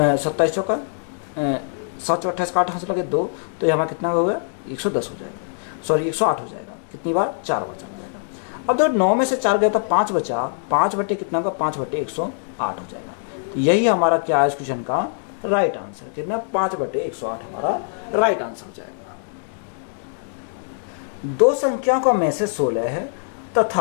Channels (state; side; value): silent; right; digital silence